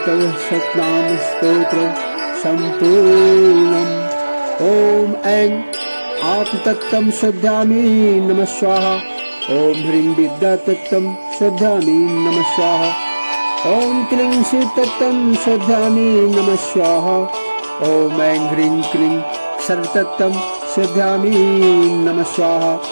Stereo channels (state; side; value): inverted; both; correlation -1.00